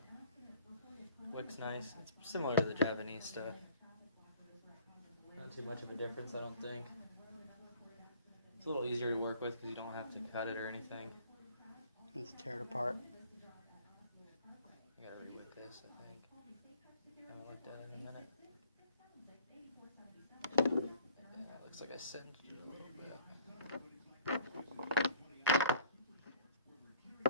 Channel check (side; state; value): both; inverted; correlation -0.51